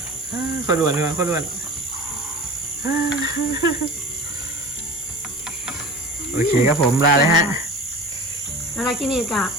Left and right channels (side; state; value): both; normal; correlation 0.36